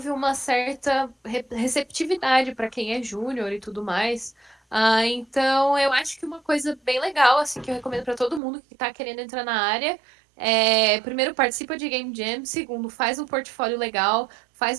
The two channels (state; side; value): drops out; left; at 8.4 s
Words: uma certa receptividade para quem é júnior e tudo mais. Então, eu acho que uma coisa bem legal, assim, que eu recomendo para todo mundo que está querendo entrar na área primeiro, participa de Game Jam. Segundo, faz um portfólio legal,